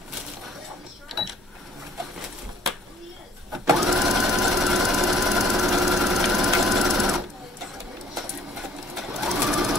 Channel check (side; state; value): both; normal; correlation 0.57